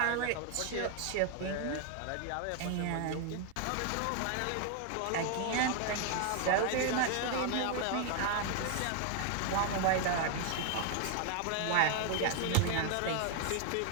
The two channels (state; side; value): different; both; correlation 0.00